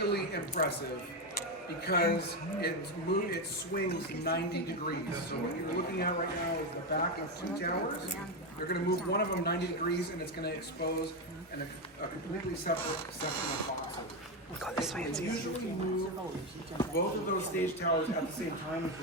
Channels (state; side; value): normal; both; correlation 0.10